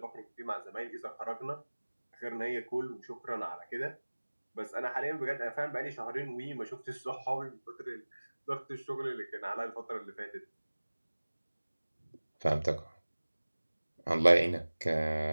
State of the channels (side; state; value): both; inverted; correlation -1.00